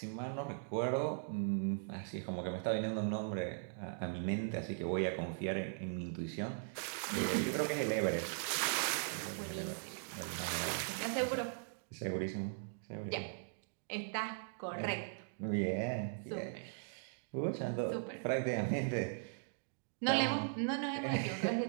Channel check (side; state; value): left; silent; digital silence